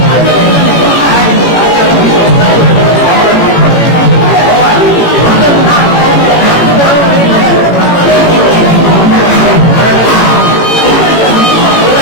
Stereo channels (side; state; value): right; late; 18 ms